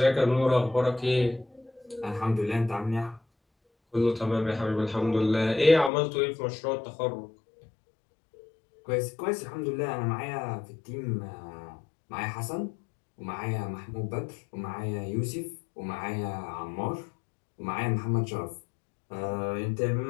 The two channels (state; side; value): drops out; right; at 5.9 s